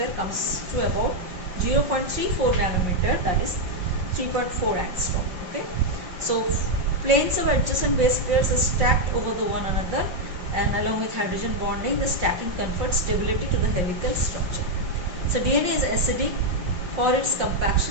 comes to about 0.34 nanometer, that is 3.4 angstrom. Okay, so planes of adjacent base pairs are stacked over the one another, and along with hydrogen bonding, the stacking confers stability to the helical structure. So DNA is acidic. For its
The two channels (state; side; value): late; left; 5.5 ms